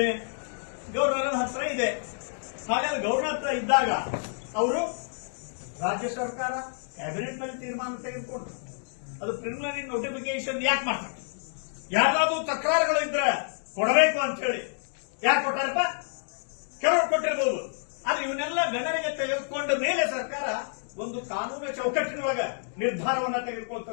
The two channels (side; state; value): right; silent; digital silence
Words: ಗವರ್ನರ್ ಹತ್ರ ಇದೆ. ಹಾಗಾದ್ರೆ ಗವರ್ನರ್ ಹತ್ರ ಇದ್ದಾಗ ಅವರು ರಾಜ್ಯ ಸರ್ಕಾರ ಕ್ಯಾಬಿನೆಟ್ ನಲ್ಲಿ ತೀರ್ಮಾನ ತೆಗೆದುಕೊಂಡ್ರು. ಅದು ಪ್ರಿಲಿಮಿನರಿ ನೋಟಿಫಿಕೇಶನ್ ಯಾಕೆ ಮಾಡ್ತಾರೆ? ಯಾರಾದ್ರೂ ತಕರಾರುಗಳಿದ್ರೆ ಕೊಡಬೇಕು ಅಂತ ಹೇಳಿ ಯಾಕೆ ಕೊಟ್ಟಾರಪ್ಪ? ಕೆಲವರು ಕೊಟ್ಟಿರಬಹುದು. ಆದ್ರೆ ಇವನ್ನೆಲ್ಲ ಗಣನೆಗೆ ತೆಗೆದುಕೊಂಡ ಮೇಲೆ ಸರ್ಕಾರ ಒಂದು ಕಾನೂನು ಚೌಕಟ್ಟಿನೊಳಗ ನಿರ್ಧಾರವನ್ನ